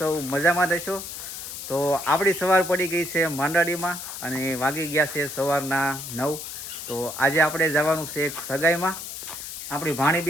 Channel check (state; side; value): noise; left; hiss, 9 dB below the sound